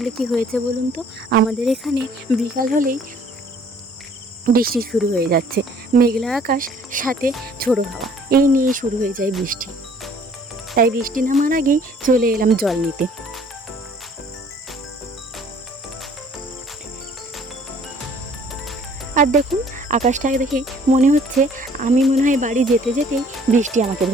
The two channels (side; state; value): both; normal; correlation 0.56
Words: কি হয়েছে বলুন তো, আমাদের এখানে বিকাল হলেই বৃষ্টি শুরু হয়ে যাচ্ছে। মেঘলা আকাশ, সাথে ঝোড়ো হাওয়া, এই নিয়ে শুরু হয়ে যায় বৃষ্টি। তাই বৃষ্টি নামার আগেই চলে এলাম জল নিতে। আর দেখুন, আকাশটা দেখে মনে হচ্ছে আমি মনে হয় বাড়ি যেতে যেতেই বৃষ্টি আমাকে